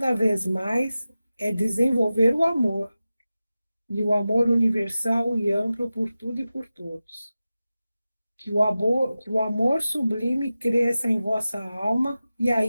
vez mais, é desenvolver o amor, e o amor universal e amplo por tudo e por todos. Que o amor sublime cresça em vossa alma e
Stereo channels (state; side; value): inverted; both; correlation -0.95